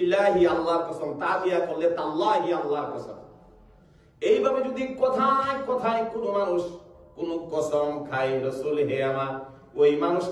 আল্লাহর কসম, তা দিয়া করলে তাল্লাহি আল্লাহর কসম। এইভাবে যদি কথায় কথায় কোন মানুষ কোন কসম খায়, রাসূল হে আমার, ওই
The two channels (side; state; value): both; identical; correlation 1.00